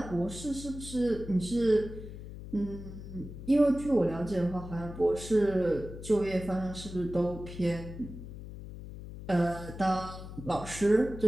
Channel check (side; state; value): left; noise; hum, 11 dB below the sound